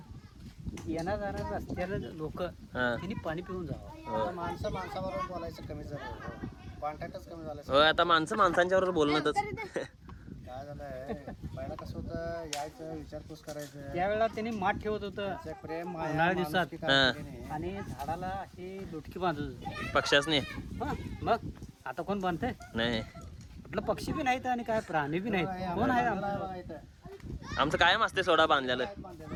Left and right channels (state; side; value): identical; both; correlation 1.00